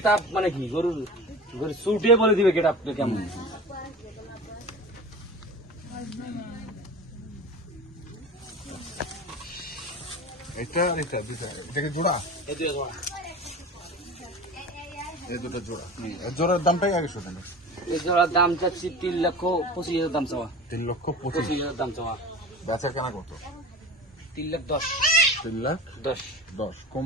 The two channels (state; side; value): normal; both; correlation 0.34